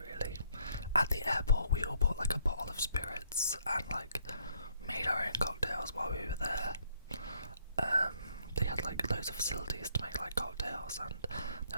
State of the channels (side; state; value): both; inverted; correlation -0.68